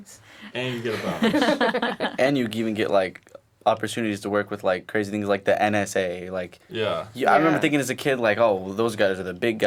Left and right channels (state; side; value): identical; both; correlation 1.00